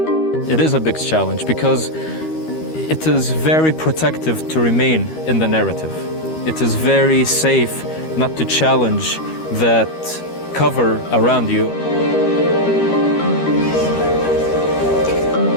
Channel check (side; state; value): right; late; 13 ms